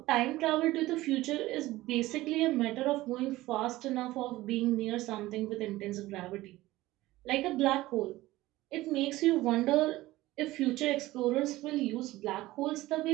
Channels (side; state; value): left; quieter; 17.6 dB